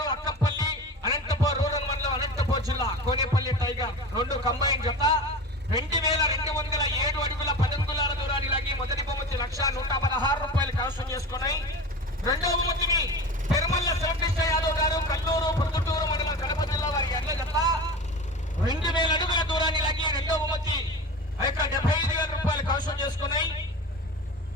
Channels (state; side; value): normal; both; correlation 0.32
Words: అక్కంపల్లి అనంతపూర్ రూరల్ మండలం, అనంతపూర్ జిల్లా కోనేపల్లి టైగర్ రెండు కంబైన్ జత 2207 అడుగుల 10 అంగుళాల దూరాన్ని లాగి మొదటి బహుమతి 1,116 రూపాయలు కైవసం చేసుకున్నాయి. రెండవ బహుమతిని తిరుమల శ్రీకృష్ణ యాదవ్ గారు, కల్లూరు ప్రొద్దుటూరు మండలం, కడప జిల్లా వారి ఎడ్ల జత 2000 అడుగుల దూరాన్ని లాగి రెండవ బహుమతి 75,000 రూపాయలు కైవసం చేసుకున్నాయి.